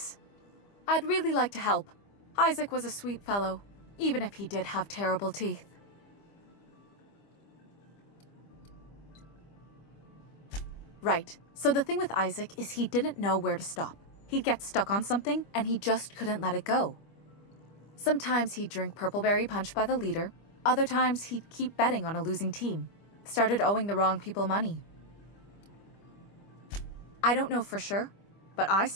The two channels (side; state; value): right; late; 25 ms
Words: I'd really like to help. Isaac was a sweet fellow, even if he did have terrible teeth. Right. So the thing with Isaac is he didn't know where to stop. He'd get stuck on something, and he just couldn't let it go. Sometimes he'd drink purpleberry punch by the liter. Other times he'd keep betting on a losing team. Started owing the wrong people money. I don't know for sure, but I